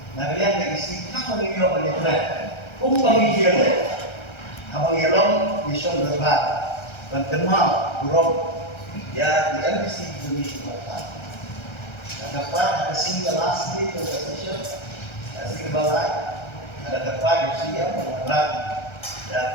Nah yang isi apa ini oleh Tuhan? Pembagian abang yelong mission berbat. Dan kenal buruk ya di NBC Indonesia Barat. Dan dapat ada single last day conversation, single balai, ada dapat di sini yang mengerak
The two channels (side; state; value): right; late; 1.3 ms